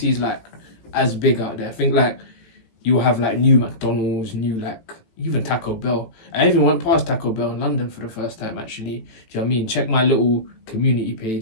is like as big out there. I think like you'll have like new McDonald's, new like even Taco Bell. I even went past Taco Bell in London for the first time actually. Do you know what I mean? Check my little community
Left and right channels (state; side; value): late; right; 18 ms